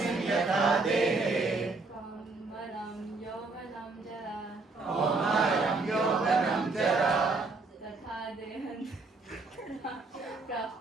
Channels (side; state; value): left; quieter; 3.7 dB